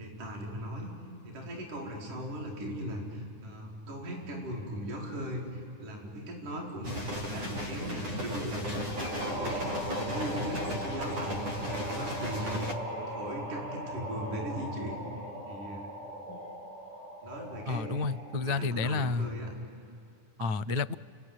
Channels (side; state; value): left; late; 9.8 ms